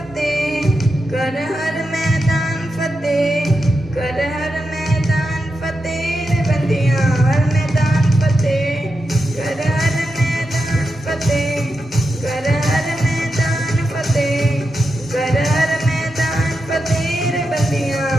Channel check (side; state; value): both; normal; correlation 0.88